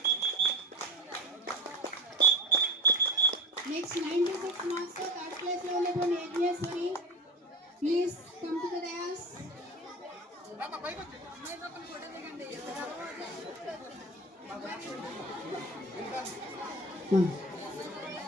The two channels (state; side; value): normal; both; correlation 0.31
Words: Next 96 marks తో 3rd ప్లేస్ లో ఉన్నటువంటి Yagneshwari please come to the dais.